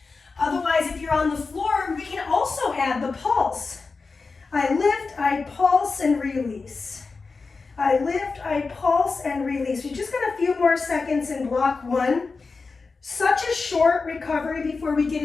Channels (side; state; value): right; quieter; 4.3 dB